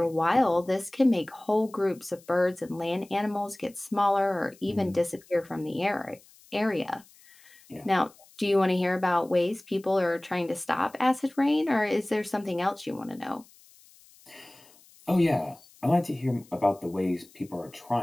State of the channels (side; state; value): left; noise; hiss, 26 dB below the sound